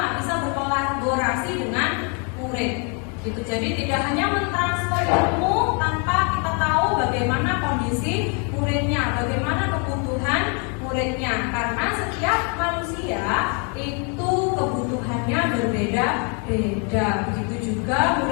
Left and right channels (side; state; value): right; quieter; 36.6 dB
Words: bisa berkolaborasi dengan murid. Gitu. Jadi tidak hanya mentransfer ilmu tanpa kita tahu bagaimana kondisi muridnya, bagaimana kebutuhan muridnya. Karena setiap manusia itu kebutuhannya berbeda-beda. Begitu juga